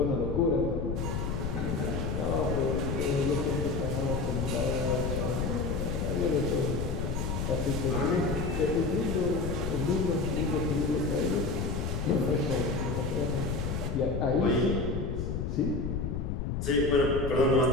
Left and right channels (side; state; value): left; noise; rumble, 2 dB below the sound